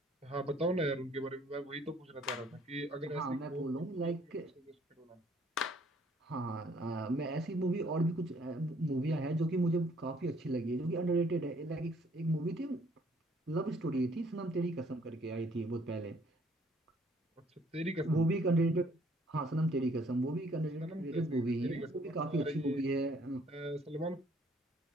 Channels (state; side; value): normal; both; correlation 0.62